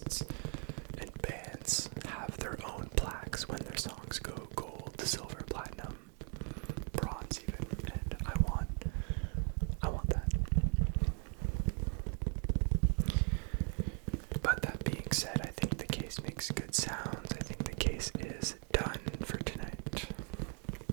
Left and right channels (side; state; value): left; quieter; 39.0 dB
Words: and bands have their own plaques when their songs go gold, silver, platinum, bronze even, and I want that. But that being said, I think the case makes good sounds. I think the case is done for tonight.